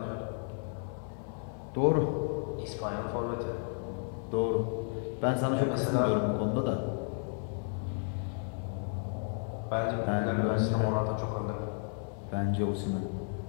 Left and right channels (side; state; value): right; silent; 56 dB below the other